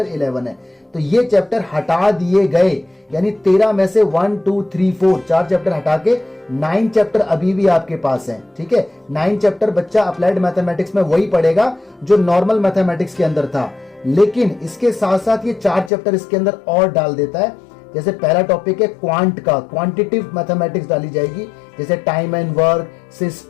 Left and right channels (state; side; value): drops out; right; at 15.9 s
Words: 11 है। तो ये चैप्टर हटा दिए गए, यानी 13 में से 1 2 3 4 4 चैप्टर हटा के 9 चैप्टर अभी भी आपके पास हैं, ठीक है। 9 चैप्टर बच्चा अप्लाइड मैथमेटिक्स में वही पढ़ेगा जो नॉर्मल मैथमेटिक्स के अंदर था, लेकिन इसके साथ साथ ये 4 चैप्टर इसके अंदर और डाल देता है। जैसे पहला टॉपिक है क्वांट का, क्वांटिटिव मैथमेटिक्स डाली जाएगी, जैसे time and work,